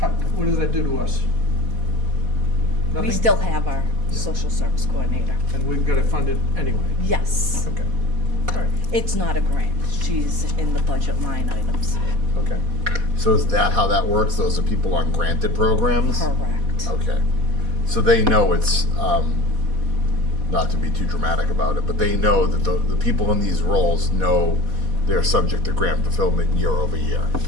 What does that do to us? We Nothing? still have our social service coordinator. And we've got to fund it anyway. Yes. Okay. All right. It's not a grant. She's in the budget line items. Okay. So is that how that works? Those are people on granted programs? Correct. Okay. So they know it's, not to be too dramatic about it, but they know that the people in these roles know they're subject to grant fulfillment year over year.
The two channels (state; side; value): late; left; 4.1 ms